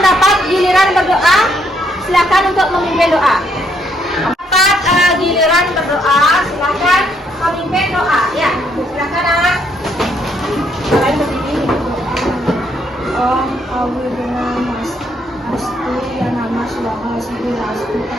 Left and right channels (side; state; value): both; normal; correlation 0.72